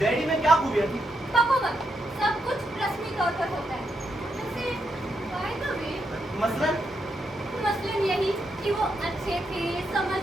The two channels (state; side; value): normal; both; correlation 0.81